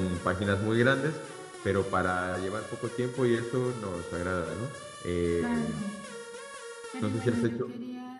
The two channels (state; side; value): identical; both; correlation 1.00